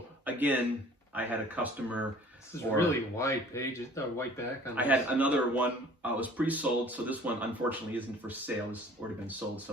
Again, I had a customer. This is really wide pages, white back on this. I had another one. It was pre-sold, so this one unfortunately isn't for sale. It's already been sold.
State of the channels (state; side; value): normal; both; correlation 0.50